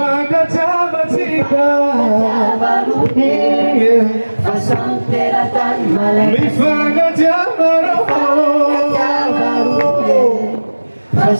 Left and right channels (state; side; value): inverted; both; correlation -1.00